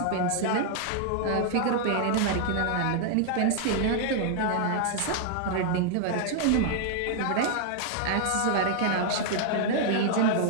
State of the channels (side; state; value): both; different; correlation 0.00